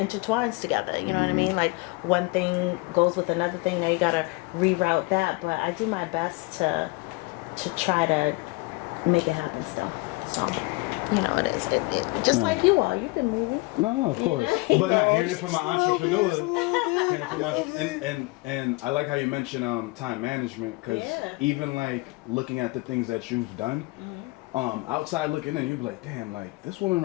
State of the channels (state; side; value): quieter; right; 25.1 dB